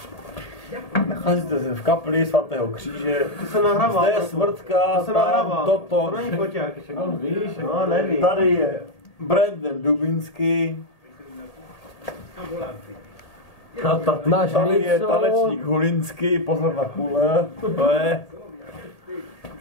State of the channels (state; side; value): late; right; 1.8 ms